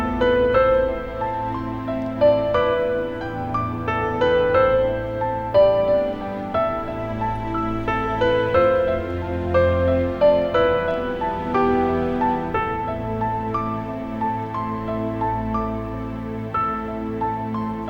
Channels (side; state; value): both; identical; correlation 1.00